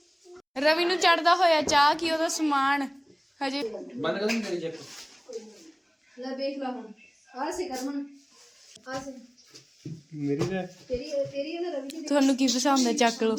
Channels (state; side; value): identical; both; correlation 1.00